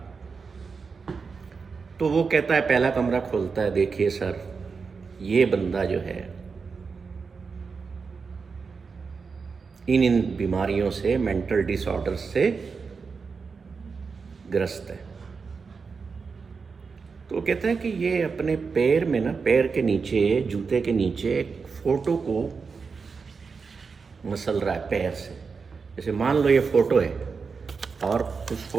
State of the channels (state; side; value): quieter; left; 5.1 dB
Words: तो वो कहता है, पहला कमरा खोलता है, देखिए सर, ये बंदा जो है इन बीमारियों से, मेंटल डिसऑर्डर्स से ग्रस्त है। तो वो कहता है कि ये अपने पैर में ना, पैर के नीचे, जूते के नीचे एक फोटो को मसल रहा है पैर से। जैसे मान लो ये फोटो है और उस